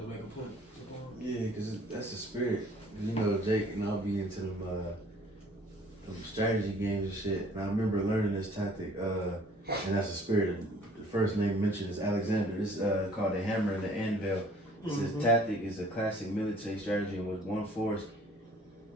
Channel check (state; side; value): normal; both; correlation 0.55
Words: to make a point? Yeah, because that's the spirit. You know, Jake and I'll be into them strategy games and shit. And I remember learning this tactic, and that's the spirit. The first name mentioned is Alexander. This is called the hammer and the anvil. This tactic is a classic military strategy in which one force,